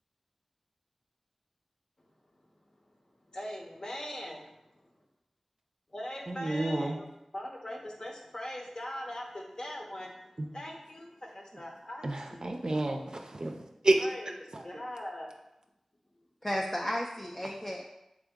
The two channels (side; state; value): both; normal; correlation 0.96